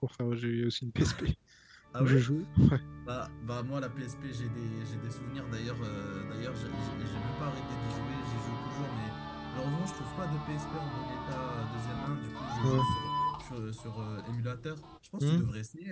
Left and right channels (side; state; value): both; identical; correlation 1.00